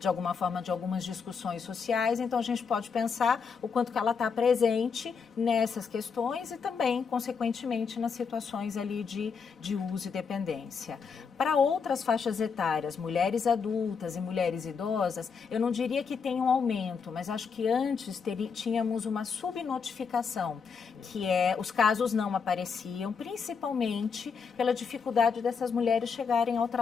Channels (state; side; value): quieter; right; 5.8 dB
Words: alguma forma, de algumas discussões sociais. Então, a gente pode pensar o quanto que ela está presente nessas questões e também, consequentemente, nas situações ali de uso e dependência. Para outras faixas etárias, mulheres adultas e mulheres idosas, eu não diria que tem um aumento, mas acho que antes tínhamos uma subnotificação, que os casos não apareciam, principalmente pela dificuldade dessas mulheres chegarem ao